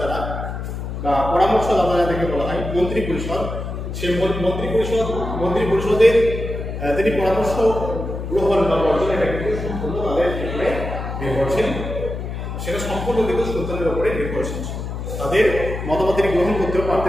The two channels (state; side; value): noise; left; hum, 6 dB below the sound